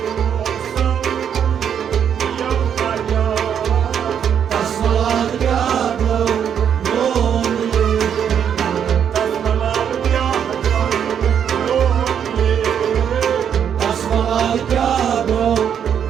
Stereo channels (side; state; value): left; quieter; 8.4 dB